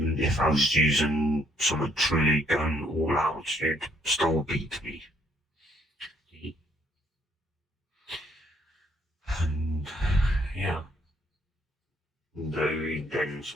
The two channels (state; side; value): normal; both; correlation 0.68